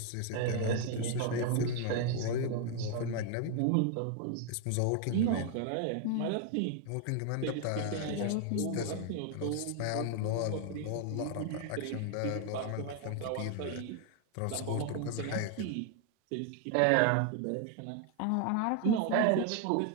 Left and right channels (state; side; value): different; both; correlation 0.00